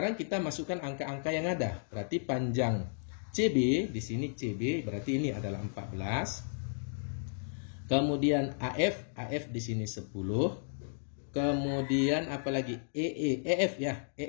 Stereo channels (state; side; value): silent; right; digital silence